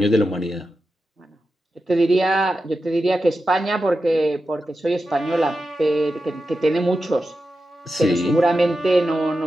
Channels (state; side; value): normal; both; correlation 0.91